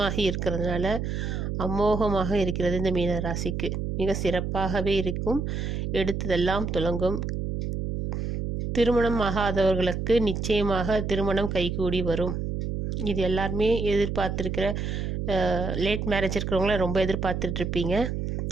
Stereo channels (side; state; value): right; noise; hum, 3 dB below the sound